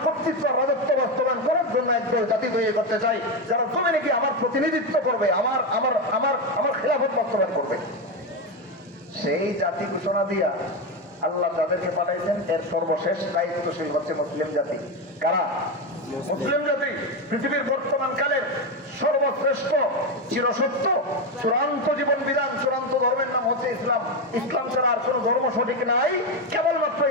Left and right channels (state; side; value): normal; both; correlation 0.12